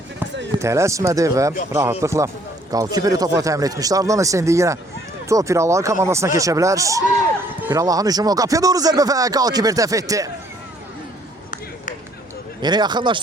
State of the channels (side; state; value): both; normal; correlation 0.62